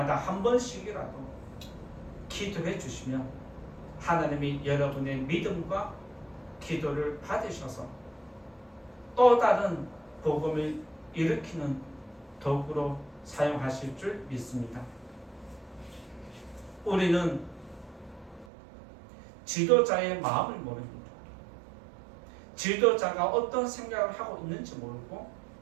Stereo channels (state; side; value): drops out; left; at 18.4 s